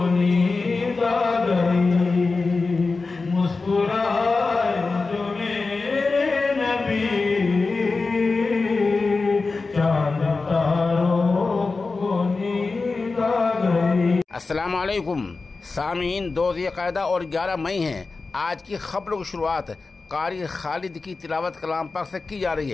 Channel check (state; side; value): quieter; right; 4.0 dB